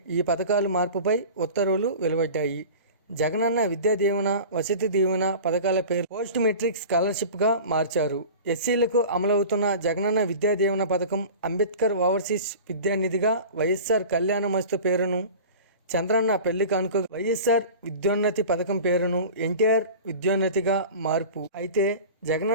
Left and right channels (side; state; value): both; inverted; correlation -0.37